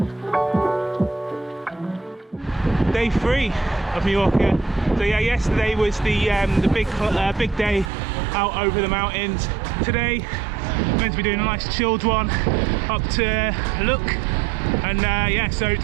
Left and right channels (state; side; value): drops out; left; at 7.9 s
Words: Day 3 of Mallorca. So yeah, yesterday was the big day out over the mountains. Today, meant to be doing a nice chilled one up to Look. And yeah, so